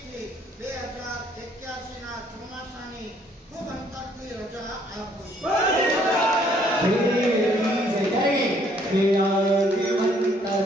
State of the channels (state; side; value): normal; both; correlation 0.64